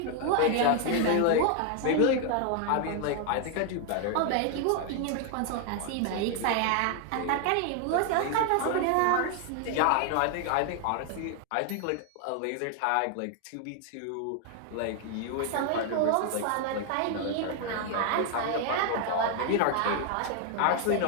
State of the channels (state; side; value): different; both; correlation 0.00